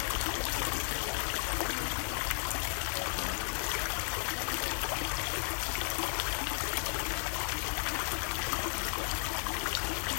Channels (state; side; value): silent; right; 55 dB below the other